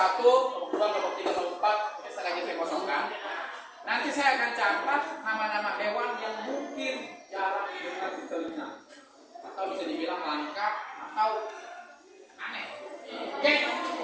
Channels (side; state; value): both; identical; correlation 1.00